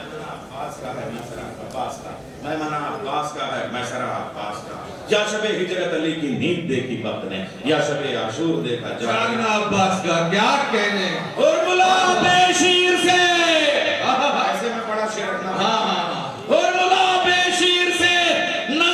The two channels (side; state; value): both; identical; correlation 1.00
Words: عباس کا ہے میسرہ عباس کا. میمنہ عباس کا ہے میسرہ عباس کا. یا شب ہجرت علی کی نیند دیکھی وقت نے، یا شب عاشور دیکھا جاگنا عباس کا. کیا کہنے اور ملا بے شیر سے ایسے میں بڑا شیر رکھنا. اور ملا بے شیر سے